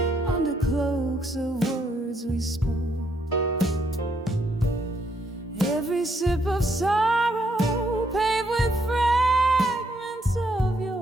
under cloaks of words we spoke. Every sip of sorrow paved with fragments of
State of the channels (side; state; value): both; normal; correlation 0.73